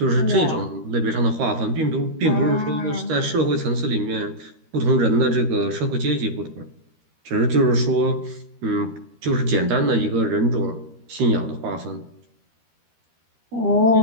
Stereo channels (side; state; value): left; late; 13 ms